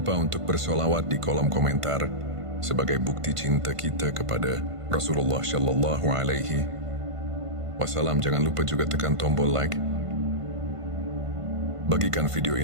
untuk bersolawat di kolom komentar sebagai bukti cinta kita kepada Rasulullah Shallallahu Alaihi Wasallam. Jangan lupa juga tekan tombol like. Bagikan video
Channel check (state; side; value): late; left; 1.5 ms